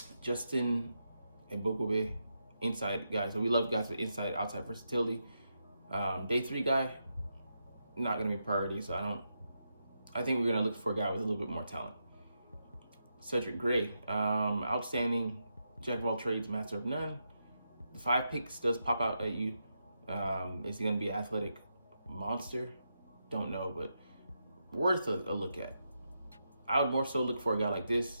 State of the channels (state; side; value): inverted; both; correlation -0.85